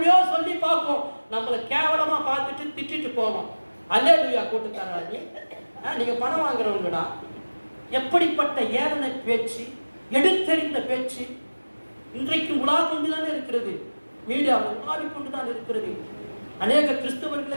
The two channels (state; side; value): inverted; both; correlation -1.00